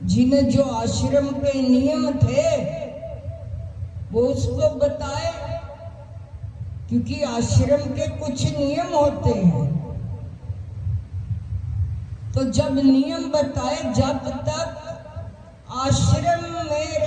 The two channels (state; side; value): identical; both; correlation 1.00